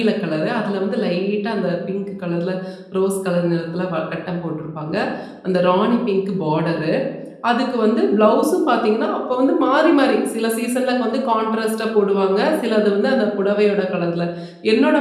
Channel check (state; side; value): identical; both; correlation 1.00